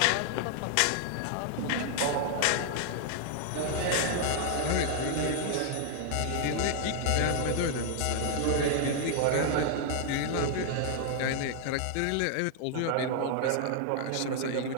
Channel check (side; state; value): both; different; correlation 0.00